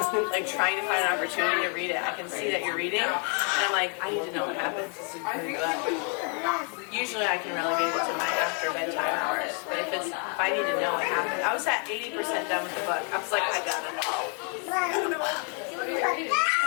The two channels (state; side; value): quieter; right; 39.6 dB